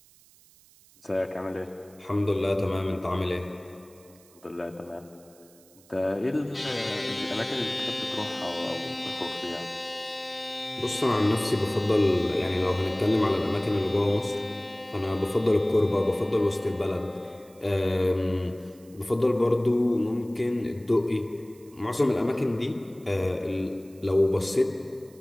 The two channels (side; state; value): right; noise; hiss, 27 dB below the sound